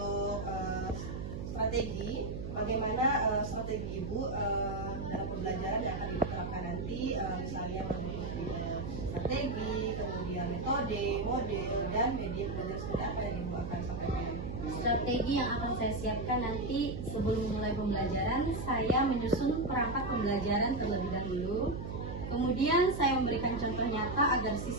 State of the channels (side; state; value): right; noise; hum, 6 dB below the sound